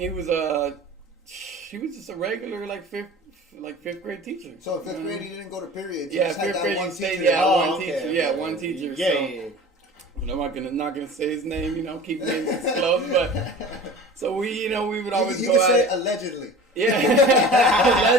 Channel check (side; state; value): both; normal; correlation 0.39